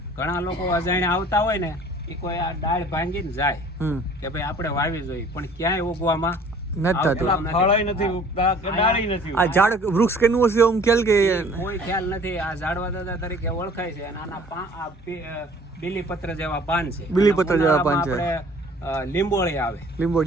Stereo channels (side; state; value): both; normal; correlation 0.51